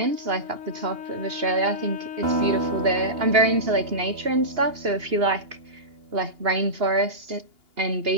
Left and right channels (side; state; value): left; late; 2.8 ms